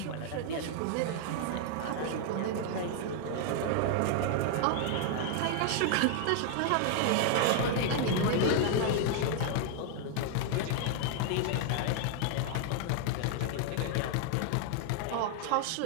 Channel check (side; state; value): both; different; correlation 0.00